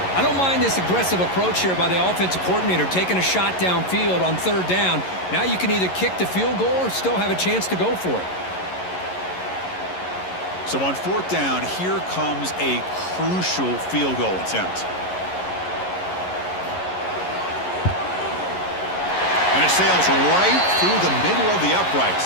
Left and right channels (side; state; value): right; late; 11 ms